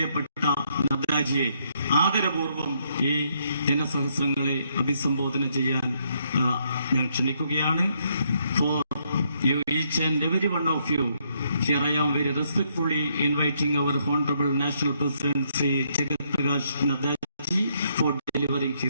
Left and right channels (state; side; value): inverted; both; correlation -0.73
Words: നദ്ദാജിയെ ആദരപൂർവ്വം ഈ ജനസഹസ്രങ്ങളെ അഭിസംബോധന ചെയ്യാൻ ഞാൻ ക്ഷണിക്കുകയാണ്. For you, each and every one of you, here I am very respectfully inviting our Honorable National President Shri Jagat Prakash Nadda ji for delivering